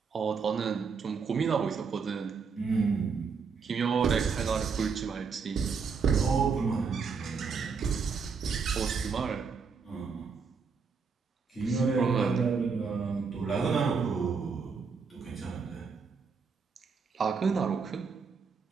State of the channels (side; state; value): left; quieter; 5.5 dB